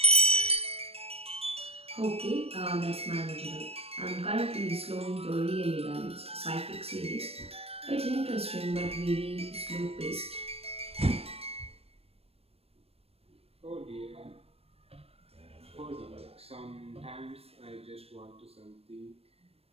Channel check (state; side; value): late; left; 0.29 ms